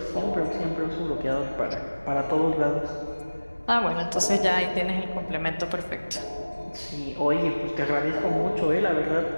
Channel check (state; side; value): inverted; both; correlation -1.00